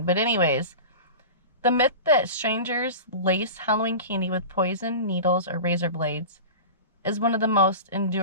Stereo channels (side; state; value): both; inverted; correlation -0.31